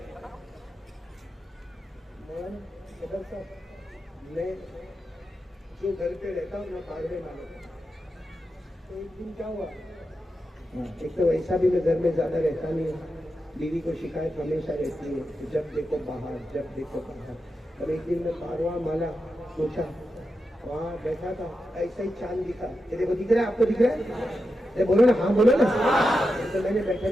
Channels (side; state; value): both; normal; correlation 0.88